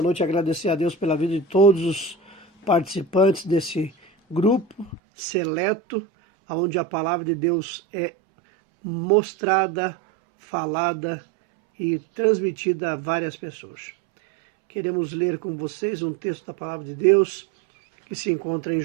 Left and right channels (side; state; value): left; drops out; at 5.0 s